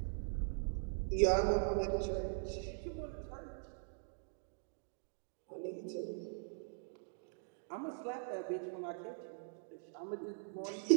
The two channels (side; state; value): left; silent; digital silence